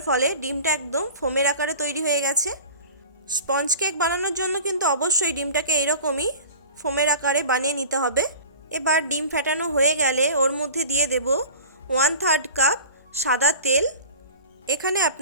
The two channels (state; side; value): inverted; both; correlation -0.39